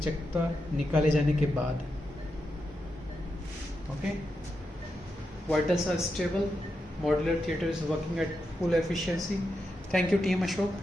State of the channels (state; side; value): normal; both; correlation 0.86